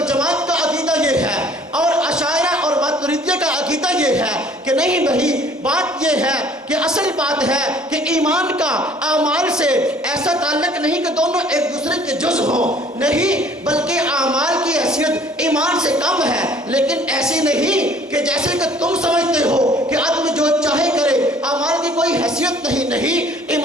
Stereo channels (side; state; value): both; normal; correlation 0.55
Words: کا عقیدہ یہ ہے، اور اشاعرہ اور ماتریدیہ کا عقیدہ یہ ہے کہ نہیں بھائی، بات یہ ہے کہ اصل بات ہے کہ ایمان کا اعمال سے ایسا تعلق نہیں کہ دونوں ایک دوسرے کے جز ہوں، نہیں، بلکہ اعمال کی حیثیت ایمان سے کم ہے، لیکن ایسی نہیں کہ جیسے کہ تم سمجھتے ہو کہ آدمی جو چاہے کرے، اعمال کی کوئی حیثیت نہیں،